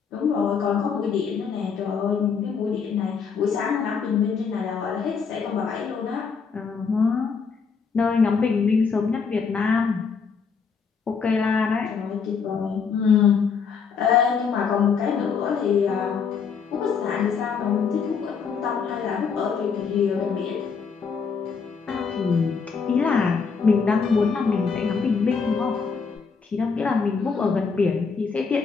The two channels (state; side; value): quieter; right; 5.7 dB